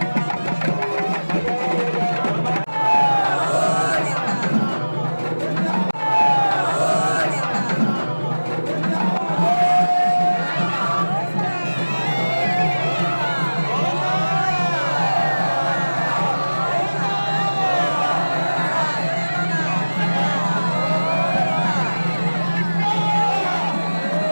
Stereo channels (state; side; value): inverted; both; correlation -1.00